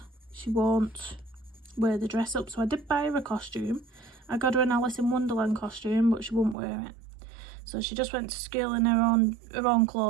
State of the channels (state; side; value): drops out; left; at 6.6 s